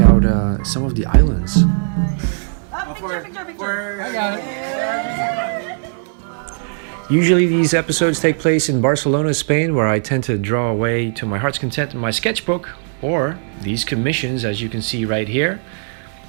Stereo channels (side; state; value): left; silent; 60 dB below the other